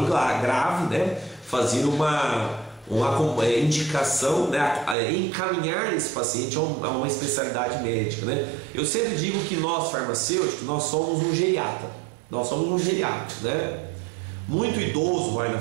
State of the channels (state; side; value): drops out; left; at 5.0 s